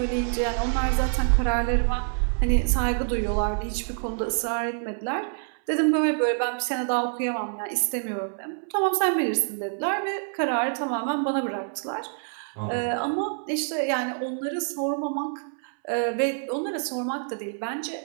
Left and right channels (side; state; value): left; silent; 61 dB below the other